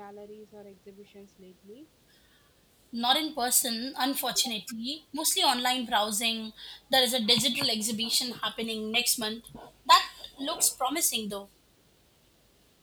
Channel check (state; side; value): identical; both; correlation 1.00